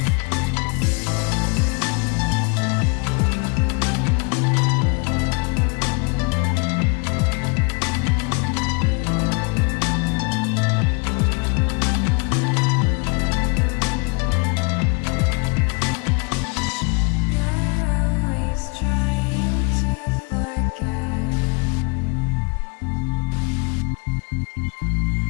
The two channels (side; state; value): right; quieter; 32.4 dB